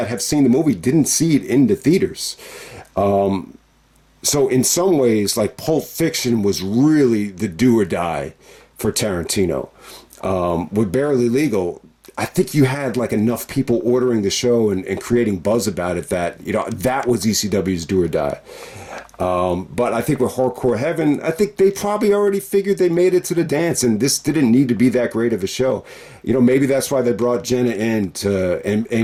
have seen the movie didn't see it in the theaters. So in some ways, like, Pulp Fiction was really the do or die for Tarantino. With Barely Legal, I think you had like enough people ordering the show and creating buzz about it that, you know, that was ECW's do or die. But I think with Hardcore Heaven, I think they probably already figured they made it to the dance, and this didn't need to be that great of a show. You know, maybe that's why they brought Jenna in and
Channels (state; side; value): identical; both; correlation 1.00